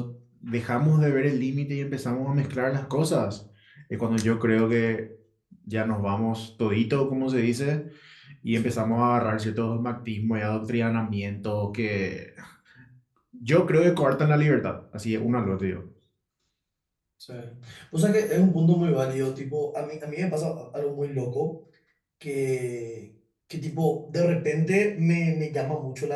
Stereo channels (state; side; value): identical; both; correlation 1.00